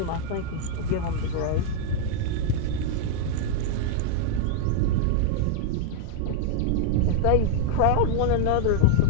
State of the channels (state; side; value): different; both; correlation -0.01